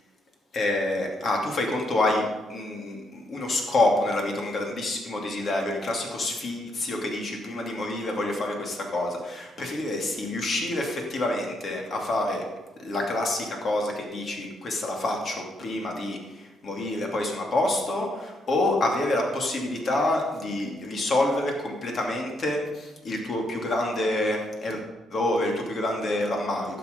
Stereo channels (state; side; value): normal; both; correlation 0.76